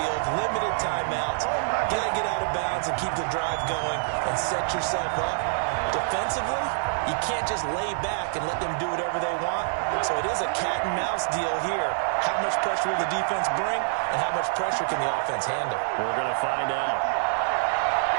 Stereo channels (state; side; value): silent; left; digital silence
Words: limited timeouts, got to get out of bounds and keep the drive going and set yourself up. Defensively, you can't just lay back and let them do whatever they want. So it is a cat and mouse deal here. How much pressure will the defense bring, and how much pressure can the offense handle? We're going to find out.